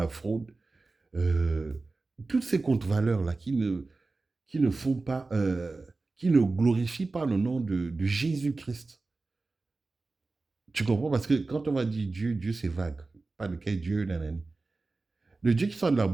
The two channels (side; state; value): left; quieter; 3.6 dB